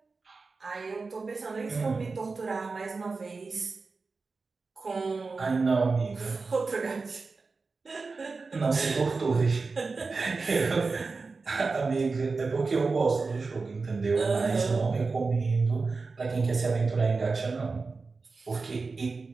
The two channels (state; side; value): quieter; left; 4.2 dB